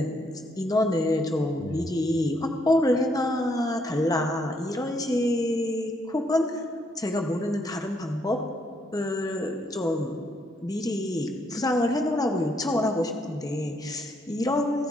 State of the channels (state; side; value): normal; both; correlation 0.73